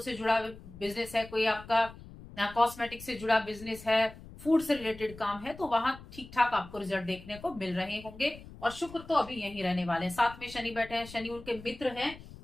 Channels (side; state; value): left; noise; rumble, 17 dB below the sound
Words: जुड़ा बिजनेस है, कोई आपका कॉस्मेटिक से जुड़ा बिजनेस है, फूड से रिलेटेड काम है, तो वहां ठीक ठाक आपको रिजल्ट देखने को मिल रहे होंगे। और शुक्र तो अभी यहीं रहने वाले हैं, साथ में शनि बैठे हैं, शनि उनके मित्र हैं।